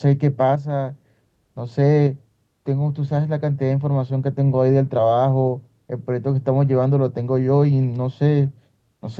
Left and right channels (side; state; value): both; identical; correlation 1.00